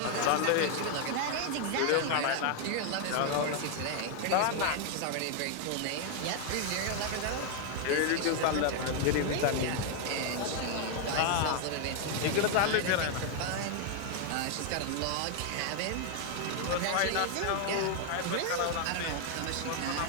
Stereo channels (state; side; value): different; both; correlation 0.00